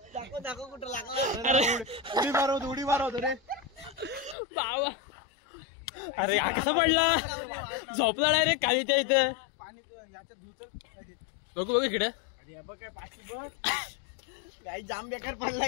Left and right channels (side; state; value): right; drops out; at 4.4 s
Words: दाखव कुठं लागला उडी मारवतो रे बाबा अरे कसा पडला झोपला डायरेक्ट खालीच्या इथे बघू बघू इकडे काय पाठी बघ काही जाम बेकार